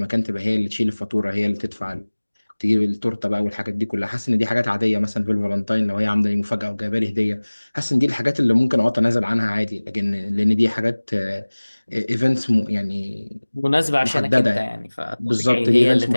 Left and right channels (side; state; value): both; inverted; correlation -1.00